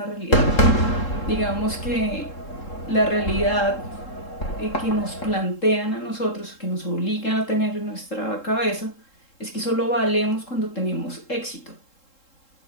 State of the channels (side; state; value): right; late; 3.7 ms